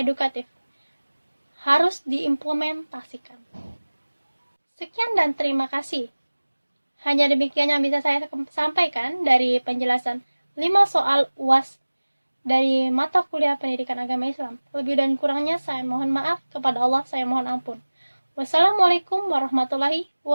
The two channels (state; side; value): inverted; both; correlation -1.00